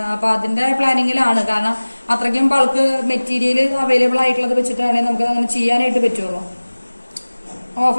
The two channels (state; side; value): inverted; both; correlation -1.00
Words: അപ്പൊ അതിന്റെ പ്ലാനിങ്ങിലാണ്. കാരണം അത്രയ്ക്കും ബൾക്ക് മെറ്റീരിയൽ അവൈലബിൾ ആയിട്ടുള്ളത് വെച്ചിട്ടാണെങ്കിൽ നമുക്ക് അങ്ങനെ ചെയ്യാനായിട്ട് പറ്റുള്ളൂ.